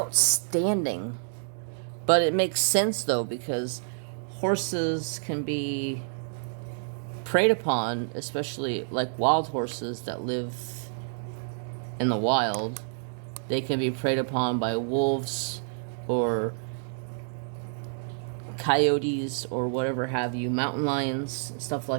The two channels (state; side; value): silent; left; digital silence